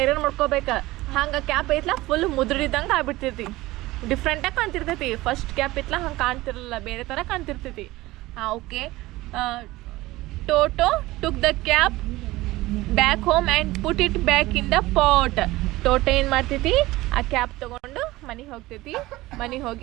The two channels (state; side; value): quieter; left; 18.8 dB